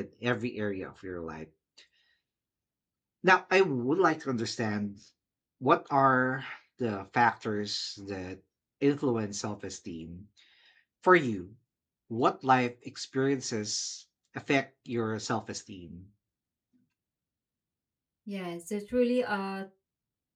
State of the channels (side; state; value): both; identical; correlation 1.00